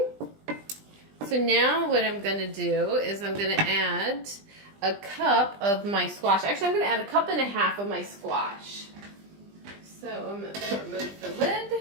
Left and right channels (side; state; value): left; late; 20 ms